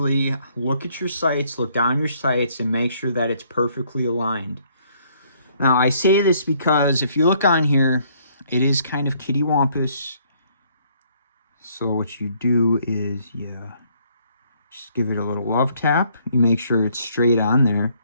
look at your sights, look down your sights, and make sure that it's perfectly aligned. Now, I say this because if you look on here, it is kind of kittywampus. So what you do is, just give it a little love tap. You make sure it's straight on there.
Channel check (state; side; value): inverted; both; correlation -0.66